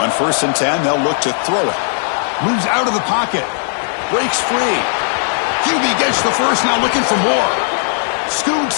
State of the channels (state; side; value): silent; right; 63 dB below the other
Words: 1st and 10, they'll look to throw it. Moves out of the pocket. Breaks free. QB gets the first, now looking for more.